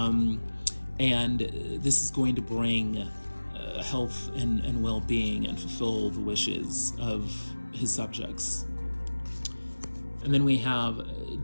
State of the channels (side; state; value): both; inverted; correlation -1.00